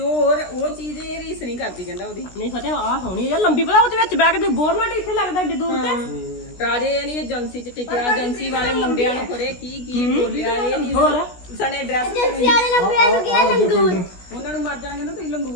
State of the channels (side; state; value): right; late; 16 ms